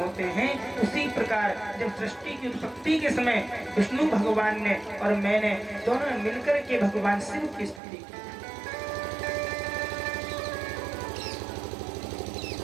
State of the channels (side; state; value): left; drops out; at 7.8 s